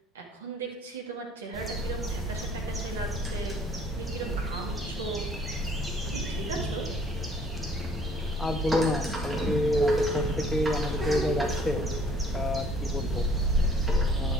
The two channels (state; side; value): normal; both; correlation 0.57